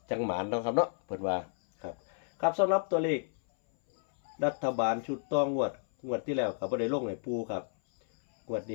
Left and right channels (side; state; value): right; silent; 57 dB below the other